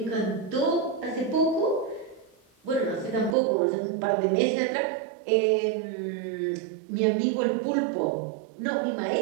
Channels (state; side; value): drops out; left; at 3.4 s